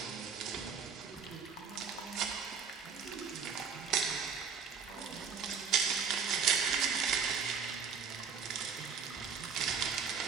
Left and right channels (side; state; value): left; quieter; 6.2 dB